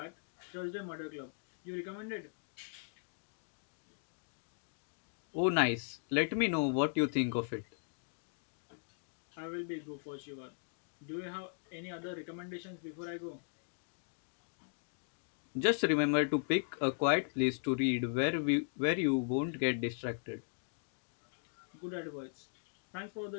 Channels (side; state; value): right; silent; digital silence